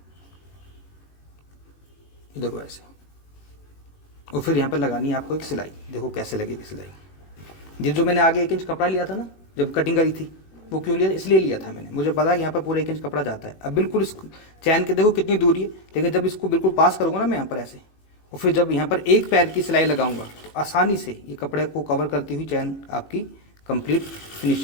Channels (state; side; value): late; right; 18 ms